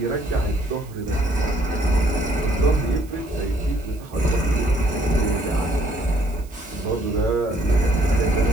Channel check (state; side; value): noise; right; hiss, 25 dB below the sound